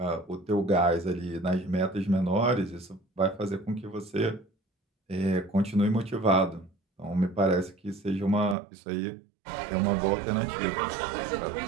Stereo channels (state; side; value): drops out; left; at 8.6 s